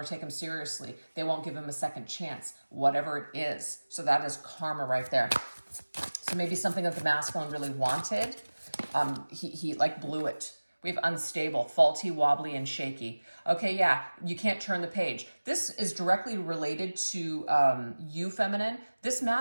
take him seriously. They won't give him a second chance, whatever it is. So that is karma right there. So maybe something that the masculine really wanted, he like blew it. We have unstable, faulty, wobbly, and shaky. Okay, yeah, you can't turn the page. This is directly related to you, feminine. This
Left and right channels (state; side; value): inverted; both; correlation -1.00